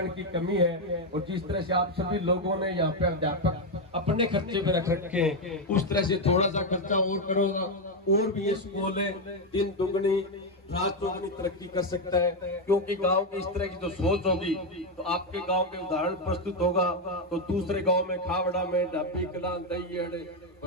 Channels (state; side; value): normal; both; correlation 0.05